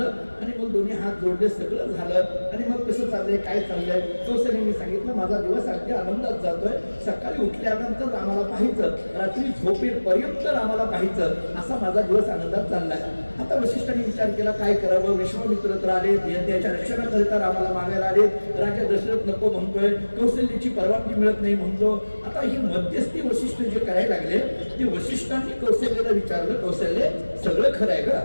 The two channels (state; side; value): inverted; both; correlation -1.00